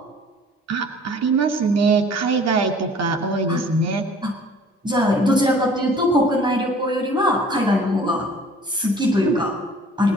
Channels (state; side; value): normal; both; correlation 0.51